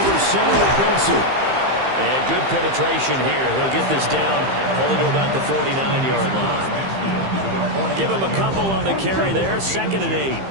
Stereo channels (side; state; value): left; late; 15 ms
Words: center with Benson. And good penetration here. He'll get this down only to about the 49-yard line. Give him a couple on the carry there. 2nd and 8.